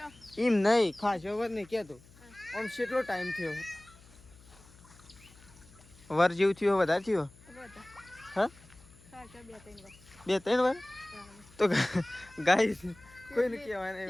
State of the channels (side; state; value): left; noise; hum, 24 dB below the sound